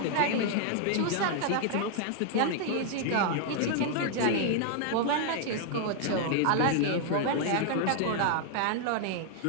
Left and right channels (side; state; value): both; different; correlation 0.00